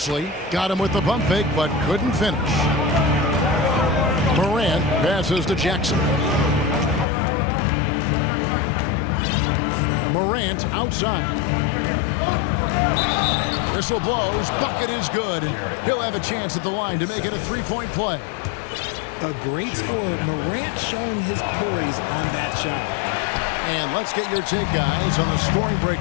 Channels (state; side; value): drops out; right; at 7.1 s